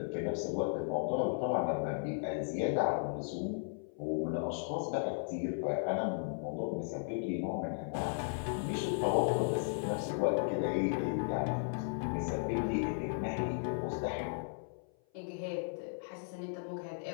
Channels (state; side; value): silent; right; 54 dB below the other